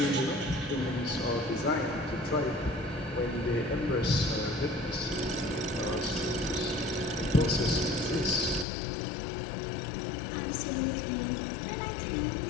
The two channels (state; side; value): drops out; right; at 8.7 s